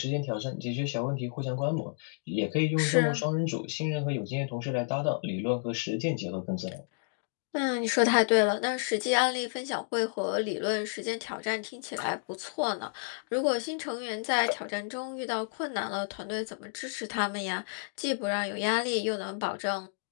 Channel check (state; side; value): silent; right; digital silence